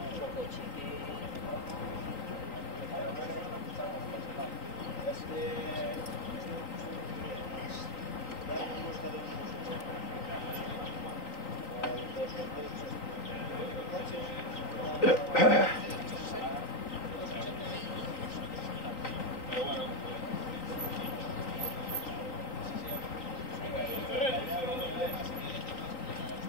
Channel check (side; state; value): right; late; 3.9 ms